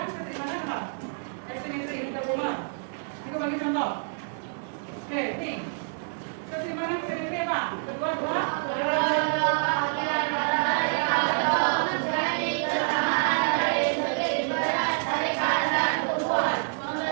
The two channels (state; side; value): silent; left; digital silence